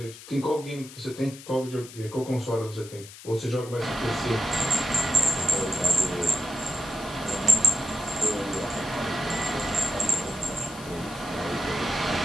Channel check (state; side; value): noise; left; hiss, 16 dB below the sound